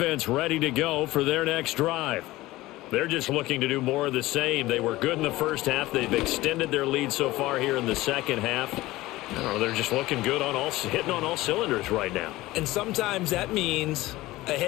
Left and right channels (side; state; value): right; quieter; 18.2 dB